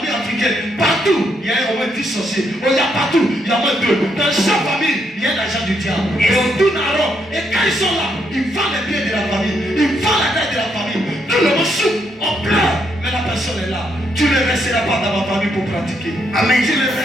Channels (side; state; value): both; normal; correlation 0.77